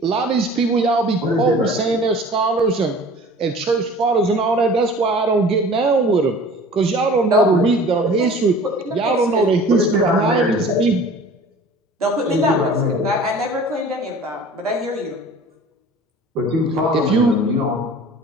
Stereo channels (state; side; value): normal; both; correlation 0.45